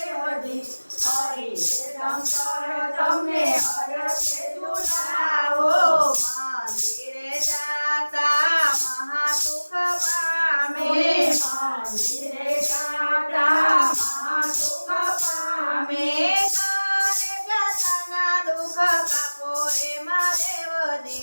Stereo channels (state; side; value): inverted; both; correlation -1.00